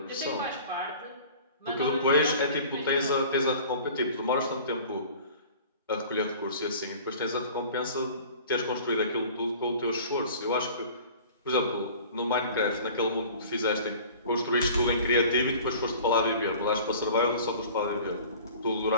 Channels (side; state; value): both; inverted; correlation -0.45